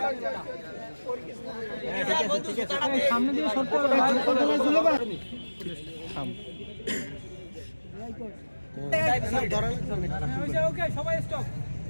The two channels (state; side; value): inverted; both; correlation -1.00